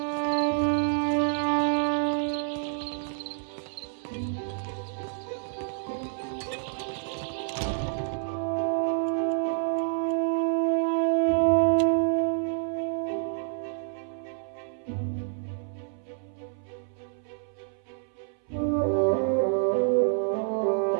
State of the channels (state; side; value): silent; left; 59 dB below the other